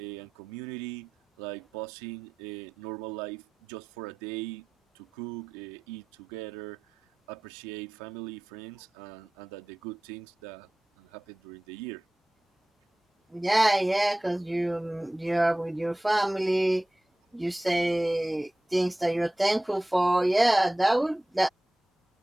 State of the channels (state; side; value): normal; both; correlation 0.96